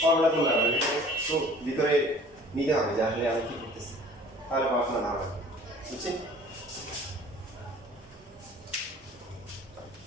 ফর্মুলা করলাম না, এটা তো ভিতরে নিতে হবে যে আসলে আমি কি করতেছি, তাহলে পড়াশোনা না হবে। বুঝছেন?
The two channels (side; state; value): both; normal; correlation 0.49